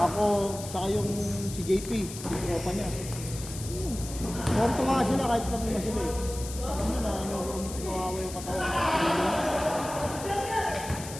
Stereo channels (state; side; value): noise; left; hiss, 11 dB below the sound